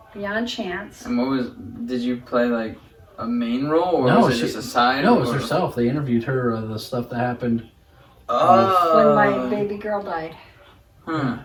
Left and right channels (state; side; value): identical; both; correlation 1.00